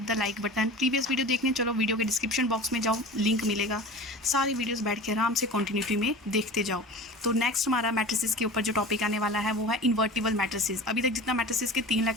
the like button. Previous video देखने चलो, वीडियो के डिस्क्रिप्शन बॉक्स में जाओ, लिंक मिलेगा, सारी वीडियोस बैठ के आराम से कंटिन्यूटी में देखते जाओ। तो नेक्स्ट हमारा मैट्रिसेस के ऊपर जो टॉपिक आने वाला है वो है इन्वर्टिबल मैट्रिसेस। अभी तक जितना मैट्रिसेस के 3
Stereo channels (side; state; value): both; normal; correlation 0.36